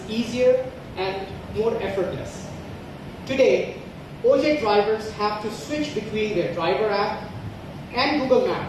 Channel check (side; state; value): both; identical; correlation 1.00